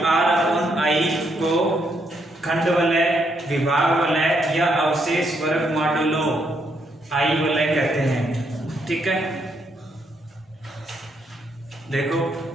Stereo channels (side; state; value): both; normal; correlation 0.75